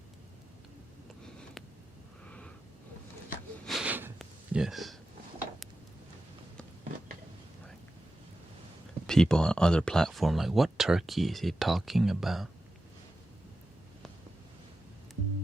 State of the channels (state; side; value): normal; both; correlation 0.92